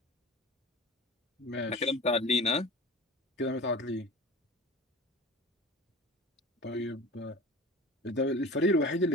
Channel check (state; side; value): normal; both; correlation 0.36